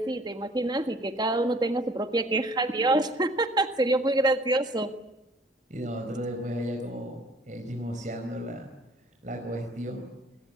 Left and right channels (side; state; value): both; normal; correlation 0.54